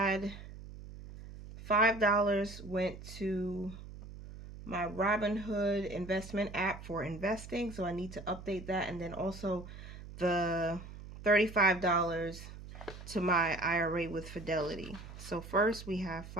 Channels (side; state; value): right; noise; hum, 13 dB below the sound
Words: $5 went to my Robinhood investment app for investing, so I need to update that, and then also the $35 to my IRA with Fidelity. So first we have